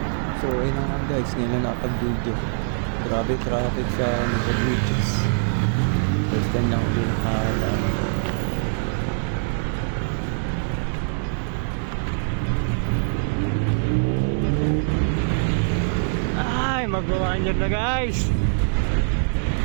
So ayun na nga guys, ngayon lang nakapag-video. Grabe traffic sa Nuevo Beaches. First time lang uli nakadaan. Ay, mag-1 year na guys.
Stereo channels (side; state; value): left; silent; digital silence